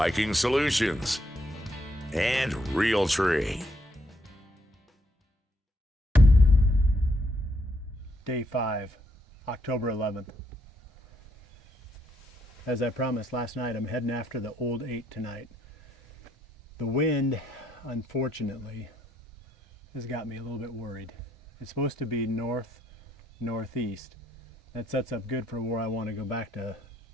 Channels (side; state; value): both; normal; correlation 0.74